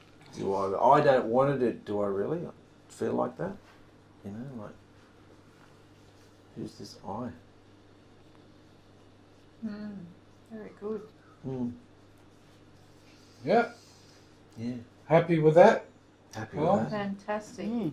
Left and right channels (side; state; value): both; identical; correlation 1.00